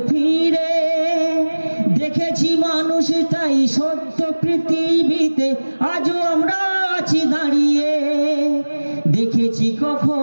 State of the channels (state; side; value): inverted; both; correlation -1.00